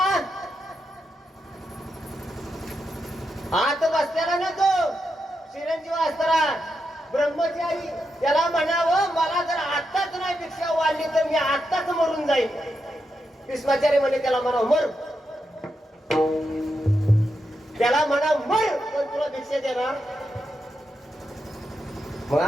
आत बसल्याला ना तो चिरंजीव असताना ब्रह्मचारी त्याला म्हणावं मला जर आत्ताच नाही भिक्षा वाढली तर मी आत्ताच मरून जाईल. भीष्माचार्य म्हणे त्याला म्हणावं मर. त्याला म्हणा मर पण तुला भिक्षा देणार. मग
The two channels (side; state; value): both; normal; correlation 0.85